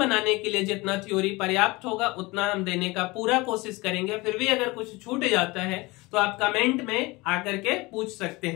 के लिए जितना थ्योरी पर्याप्त होगा उतना हम देने का पूरा कोशिश करेंगे। फिर भी अगर कुछ छूट जाता है तो आप कमेंट में आकर के पूछ सकते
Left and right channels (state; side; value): quieter; right; 23.1 dB